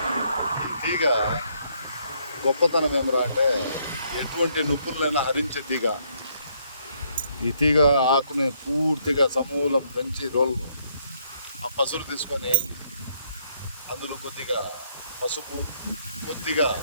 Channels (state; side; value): inverted; both; correlation -0.71